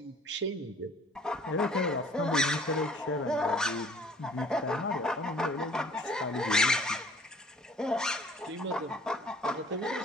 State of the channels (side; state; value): both; normal; correlation 0.54